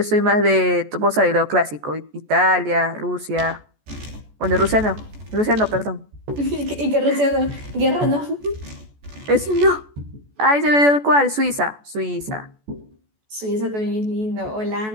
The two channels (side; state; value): left; late; 14 ms